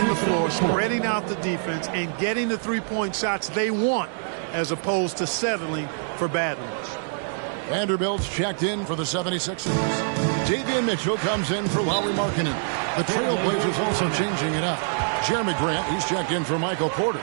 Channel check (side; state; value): left; silent; digital silence